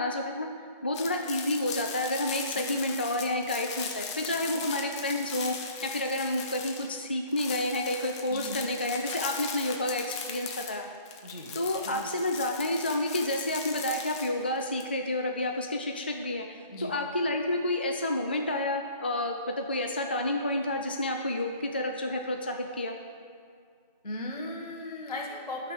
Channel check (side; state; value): both; inverted; correlation -0.51